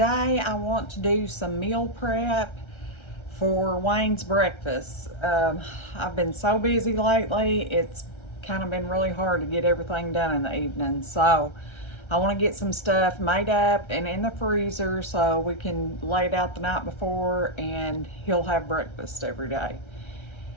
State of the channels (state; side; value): late; right; 1.3 ms